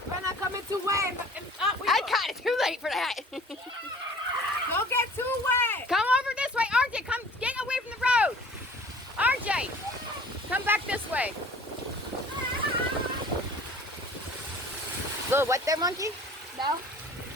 We're not coming too wet. I got it too late for that. Don't get too wet. Come over this way, RJ. Come get away from the road. RJ, come back this way. Little wet there, monkey? No.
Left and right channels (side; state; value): both; normal; correlation 0.47